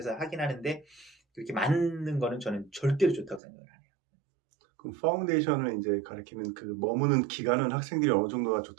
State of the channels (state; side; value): drops out; left; at 3.4 s